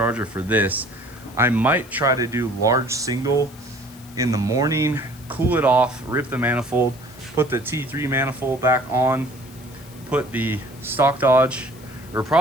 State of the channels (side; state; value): left; noise; hiss, 22 dB below the sound